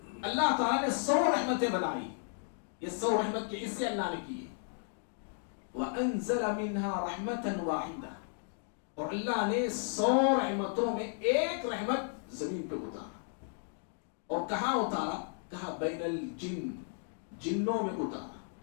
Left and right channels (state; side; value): silent; right; 55 dB below the other